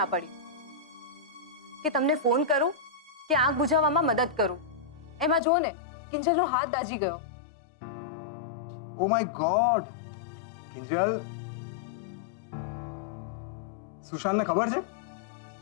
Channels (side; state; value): right; drops out; at 5.4 s